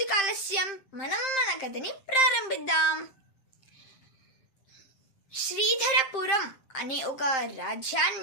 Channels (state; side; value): late; right; 7.6 ms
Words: ఆలస్యం, మనం మన కథని ప్రారంభిద్దాం. శ్రీధరపురం అనే ఒక